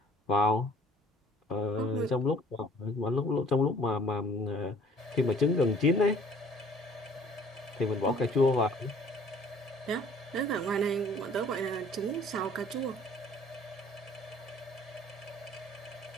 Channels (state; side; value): normal; both; correlation 0.54